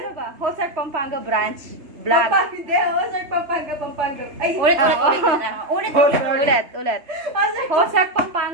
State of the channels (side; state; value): left; late; 3.3 ms